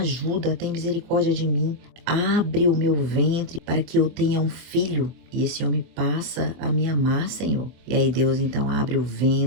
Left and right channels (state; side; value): late; left; 24 ms